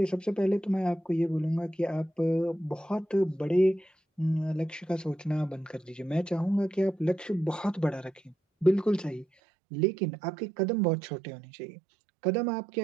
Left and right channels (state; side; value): drops out; left; at 9.2 s